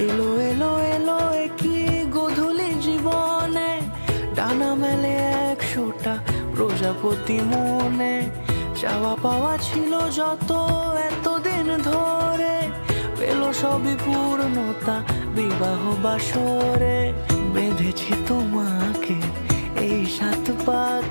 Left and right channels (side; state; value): both; inverted; correlation -1.00